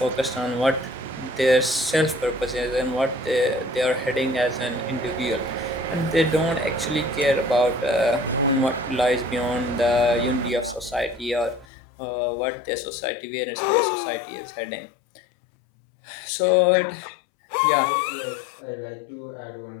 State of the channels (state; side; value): drops out; right; at 11.7 s